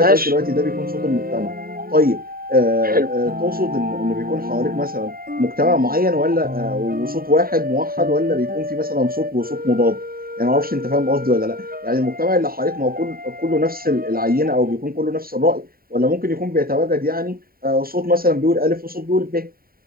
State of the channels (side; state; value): left; late; 0.43 ms